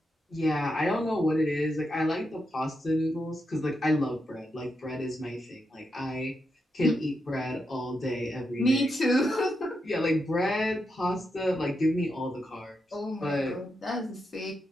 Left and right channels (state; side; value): normal; both; correlation 0.84